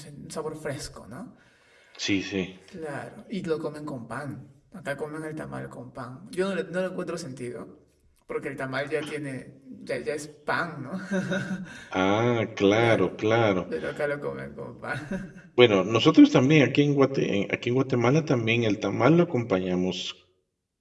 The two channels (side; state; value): both; identical; correlation 1.00